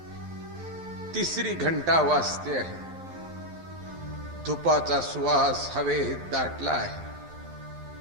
तिसरी घंटा वाजते आहे. धुपाचा सुवास हवेत दाटला आहे.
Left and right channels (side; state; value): left; late; 12 ms